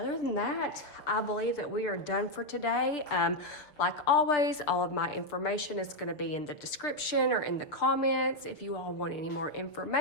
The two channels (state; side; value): late; right; 6.7 ms